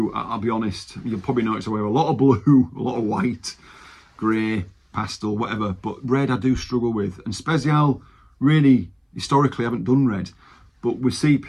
I'll be honest. You'll probably notice I wear a lot of blue, a lot of white, grey, pastel, whatever. But red I do struggle with. And SPZL, really, historically, haven't done red. But with CP,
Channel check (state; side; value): identical; both; correlation 1.00